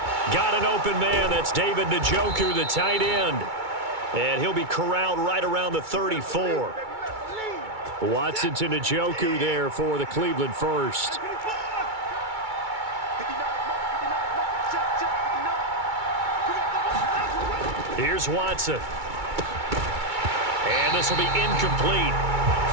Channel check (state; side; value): late; left; 2.3 ms